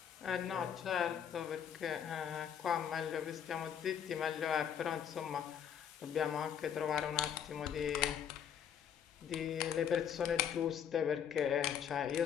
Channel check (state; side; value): quieter; right; 8.6 dB